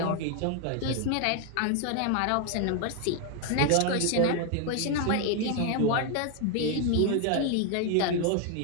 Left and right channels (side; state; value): both; different; correlation 0.01